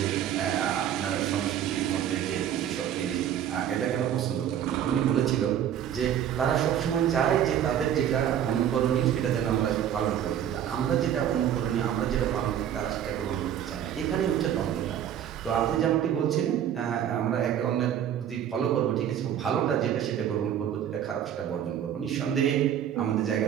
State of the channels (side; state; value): left; quieter; 10.0 dB